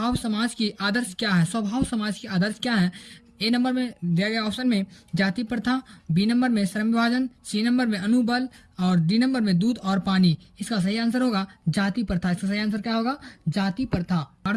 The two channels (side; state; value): both; identical; correlation 1.00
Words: समाज की आदर्श क्या है? स्वभाव समाज की आदर्श क्या है? A नंबर में दिया गया ऑप्शन में जाति प्रथा। B नंबर में श्रम विभाजन। C नंबर में अनुबल। और D नंबर में दूध और पानी। इसका सही आंसर होगा जाति प्रथा। इसका सही आंसर क्या होगा? जाति प्रथा। 12